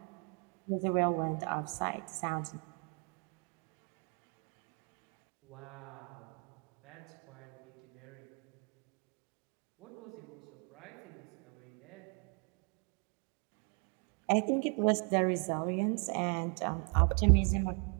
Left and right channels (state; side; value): quieter; left; 38.7 dB